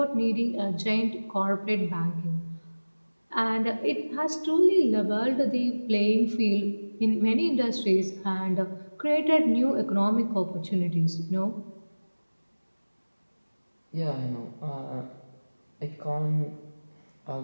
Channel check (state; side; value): inverted; both; correlation -1.00